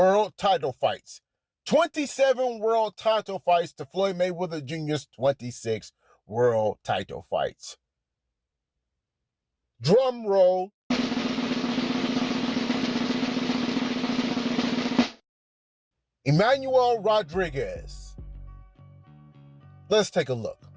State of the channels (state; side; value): identical; both; correlation 1.00